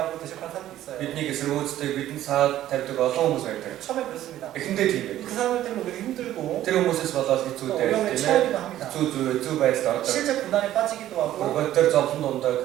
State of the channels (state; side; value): quieter; left; 13.1 dB